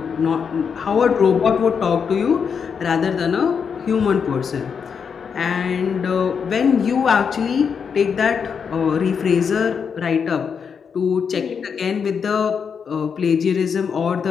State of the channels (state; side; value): quieter; right; 6.5 dB